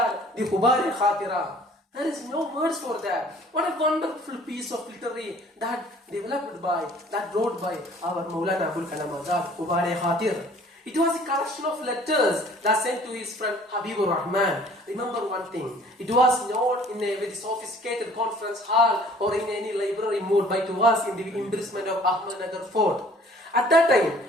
the Hubari Khatira, there is no words for that. What a wonderful piece of literary that wrote by our Maulana Abul Kalam Azad, Hubari Khatir. It was a collection of letters that sent to his friend Habibur Rahman. Remember one thing, it was not in a very sophisticated conference hall or in any library mode, but it was in the imprisonment of Ahmednagar Fort. At that time,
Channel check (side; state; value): both; normal; correlation 0.53